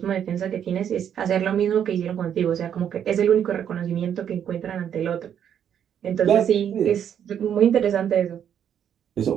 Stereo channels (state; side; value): quieter; left; 9.0 dB